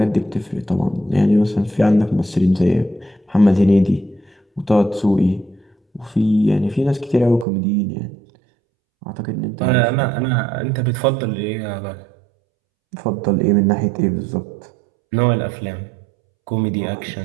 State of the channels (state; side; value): drops out; left; at 7.5 s